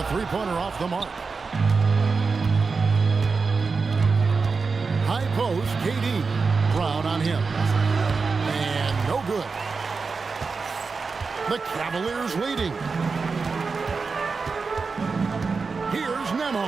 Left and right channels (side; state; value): left; quieter; 4.7 dB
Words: three-pointer off the mark. High post, KD. Brown on him. And no good. The Cavaliers leading. Here's